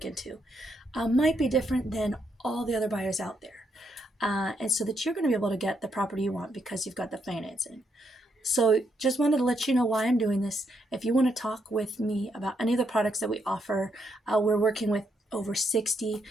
into might be different than all the other buyers out there. And so that you're going to be able to get the property you want because you've got the financing. So just wanted to let you know why I'm doing this. If you want to talk with me about any of the products that we offer, we're working with over 60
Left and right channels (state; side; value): normal; both; correlation 0.77